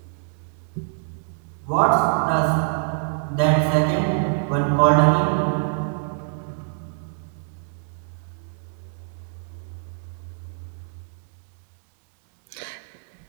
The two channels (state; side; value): silent; left; 62 dB below the other